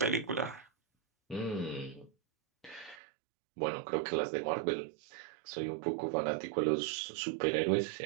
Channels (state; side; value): drops out; left; at 3.0 s